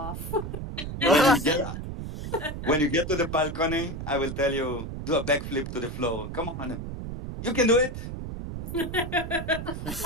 When you get when you get to the balcony, I will tell you do a backflip to the floor. Come on, you can do it.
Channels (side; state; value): right; noise; rumble, 7 dB below the sound